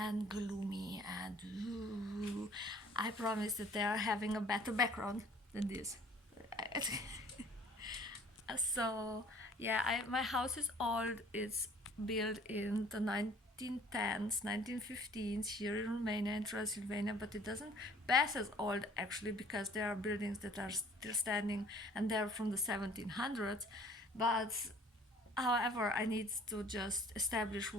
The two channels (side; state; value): both; normal; correlation 0.53